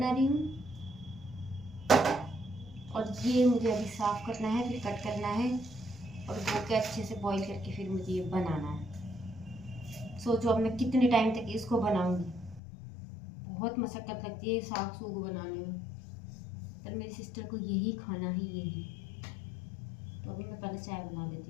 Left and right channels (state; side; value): drops out; right; at 12.6 s